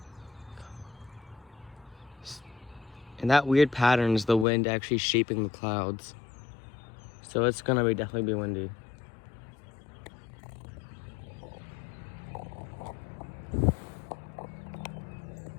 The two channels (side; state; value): right; drops out; at 4.5 s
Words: And that weird pattern is the wind actually shaping the clouds. So it's gonna definitely be windy.